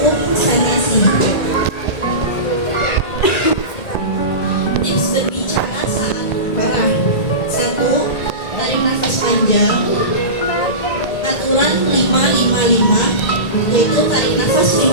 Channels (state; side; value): late; right; 1.8 ms